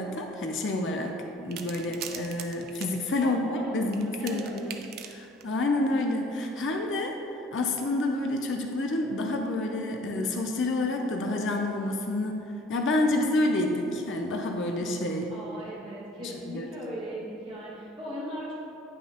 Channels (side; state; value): both; normal; correlation 0.55